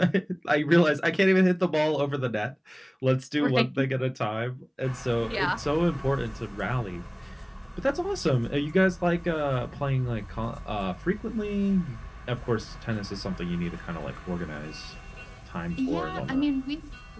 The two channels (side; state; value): both; identical; correlation 1.00